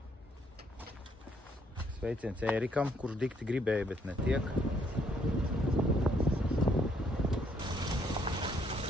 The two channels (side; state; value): both; normal; correlation 0.69